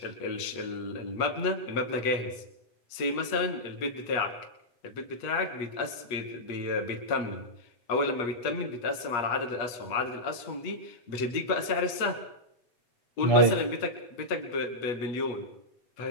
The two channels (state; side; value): late; right; 8.3 ms